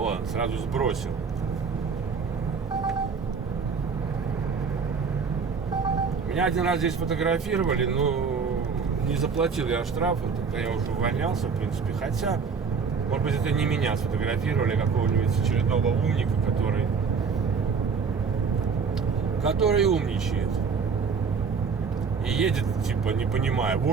сразу сбросил. Меня один раз здесь фотографировали, но не заплатил я штраф, тогда я уже увольнялся, в принципе. Хотя, может быть, это не меня сфотографировали, а какого-нибудь очередного умника, который умничает. И едет, типа, не понимая,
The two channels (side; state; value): left; quieter; 5.5 dB